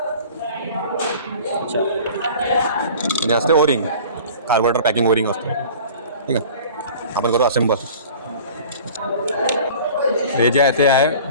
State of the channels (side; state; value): both; inverted; correlation -0.44